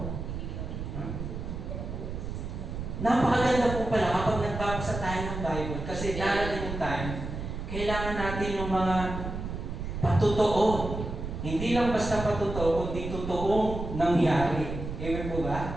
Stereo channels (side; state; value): right; noise; rumble, 6 dB below the sound